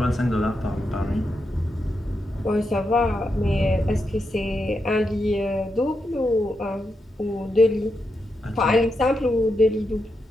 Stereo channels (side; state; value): both; normal; correlation 0.85